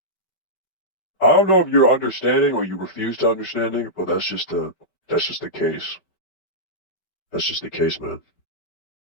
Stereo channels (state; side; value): late; right; 5.2 ms